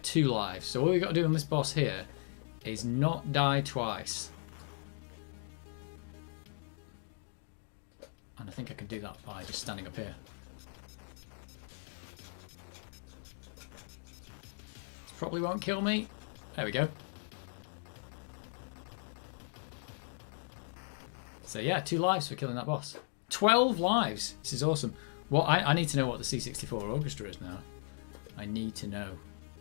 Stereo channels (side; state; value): right; silent; digital silence